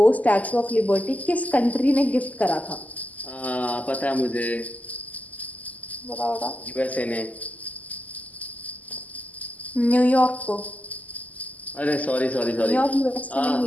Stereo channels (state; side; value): late; right; 0.076 ms